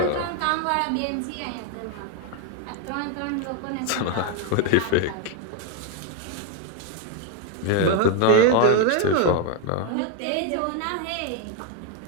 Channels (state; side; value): different; both; correlation 0.01